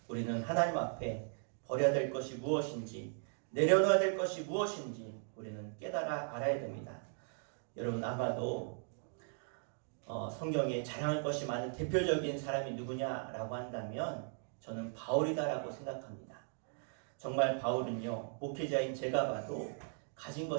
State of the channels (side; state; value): left; silent; 52 dB below the other